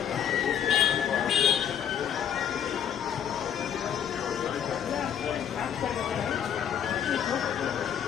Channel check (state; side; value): quieter; right; 9.0 dB